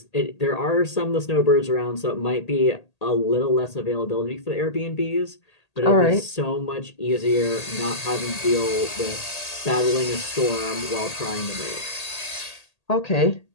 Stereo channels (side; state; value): right; late; 1.8 ms